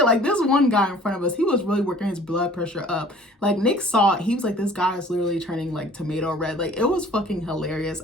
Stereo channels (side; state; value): both; normal; correlation 0.50